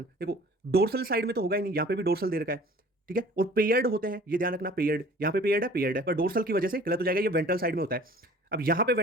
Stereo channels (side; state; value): both; normal; correlation 0.49